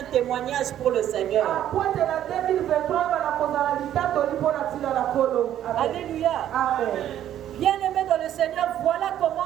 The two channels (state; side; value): quieter; left; 11.3 dB